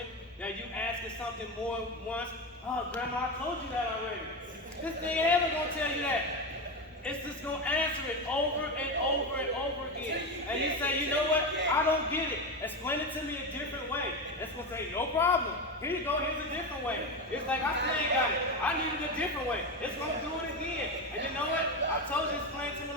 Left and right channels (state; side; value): normal; both; correlation 0.17